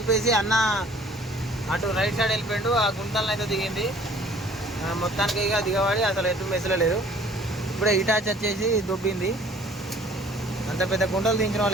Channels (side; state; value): both; normal; correlation 0.54